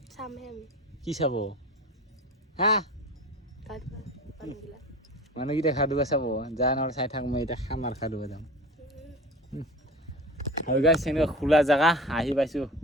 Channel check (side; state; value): both; normal; correlation 0.35